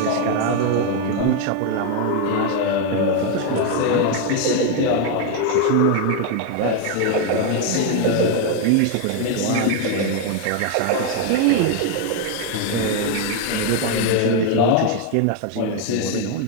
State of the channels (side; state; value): both; different; correlation 0.01